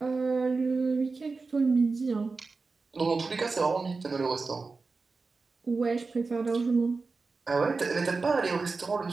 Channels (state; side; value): quieter; left; 4.1 dB